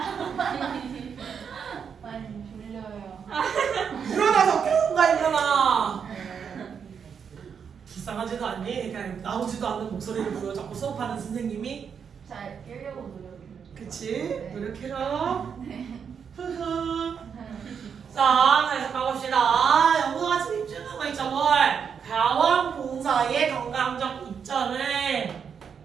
많이 졸려요. 일어나서 깨운가 일어나. 불쌍하지도 않니? 그냥 나오지도 않는 목소리를 보여 자꾸 수업하는 선생님이. 잘 깨려고 노력해요. 그치? 노력해라. 흐흐. 자, 다시 가봅시다. 영어가 집중하고 거 있죠, 뭘? 가원 봉사의 건강적 이점을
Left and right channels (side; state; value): left; quieter; 6.9 dB